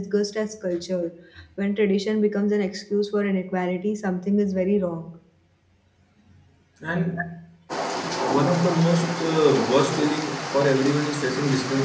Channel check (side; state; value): both; identical; correlation 1.00